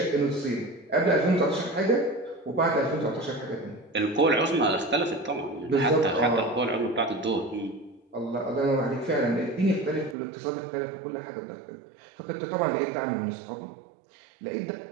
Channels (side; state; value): left; drops out; at 10.2 s